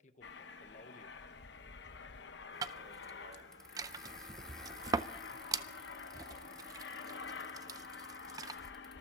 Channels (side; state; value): both; normal; correlation 0.14